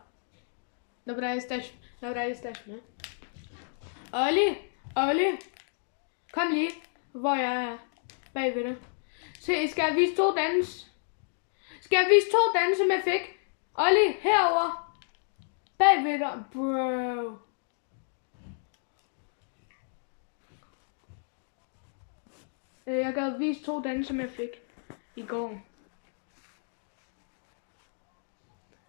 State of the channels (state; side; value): silent; right; digital silence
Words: Dobra, jesteśmy. Olli, kom lige, hvor jeg er bagved dig. Se, skal jeg vise to dans? Skal jeg vise to danse, som jeg fik? Olli, herover. Bagved dig, bro. Jeg gad vise to danse, som jeg fik i går.